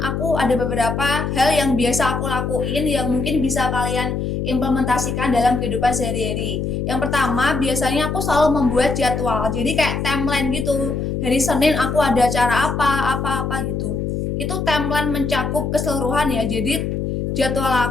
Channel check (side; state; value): left; noise; hum, 2 dB below the sound